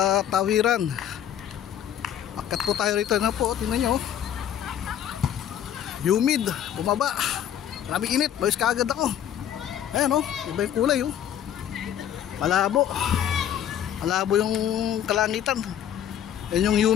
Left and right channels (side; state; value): right; quieter; 10.1 dB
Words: tawiran. Akat po tayo rito na po, tingnan nyo. Humid, bumaba. Maraming init, bayos kaagad ako. Ayan o, iba yung kulay o. Malabo. Malabo yung kalangitan. Yan yung